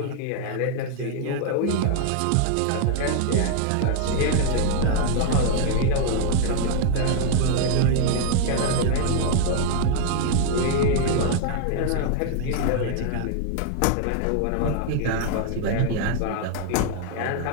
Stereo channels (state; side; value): different; both; correlation 0.00